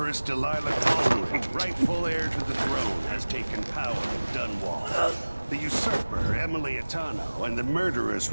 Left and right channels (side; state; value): both; inverted; correlation -1.00